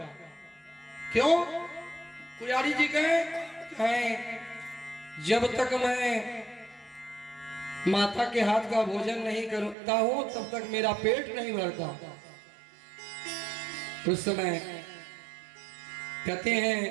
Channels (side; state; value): left; drops out; at 9.8 s